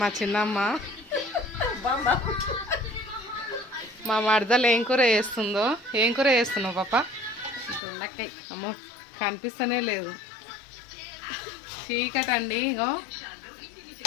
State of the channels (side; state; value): right; drops out; at 7.8 s